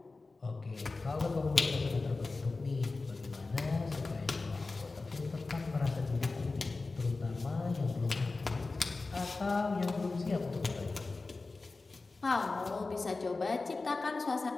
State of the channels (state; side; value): quieter; right; 3.7 dB